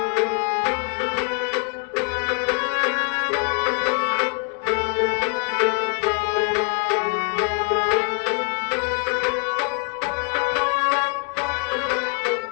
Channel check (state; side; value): quieter; right; 36.7 dB